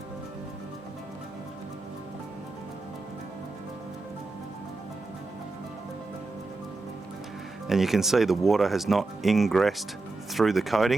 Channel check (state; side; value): quieter; left; 3.3 dB